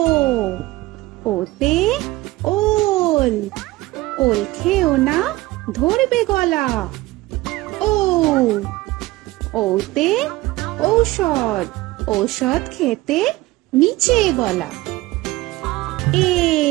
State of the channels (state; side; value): quieter; left; 19.1 dB